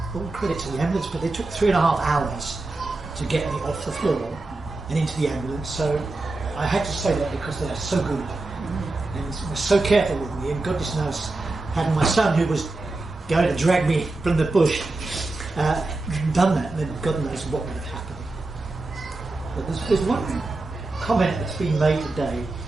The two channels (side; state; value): left; quieter; 3.1 dB